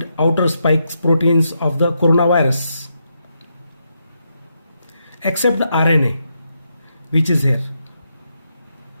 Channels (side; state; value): both; inverted; correlation -0.82